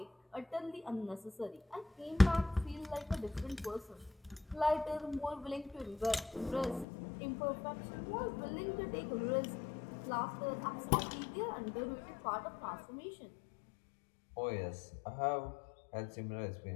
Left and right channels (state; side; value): drops out; right; at 6.9 s